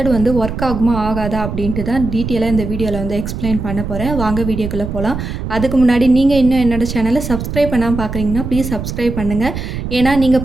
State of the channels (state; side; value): noise; right; rumble, 6 dB below the sound